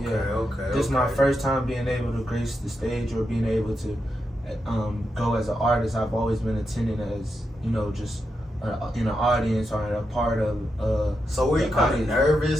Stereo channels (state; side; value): normal; both; correlation 0.86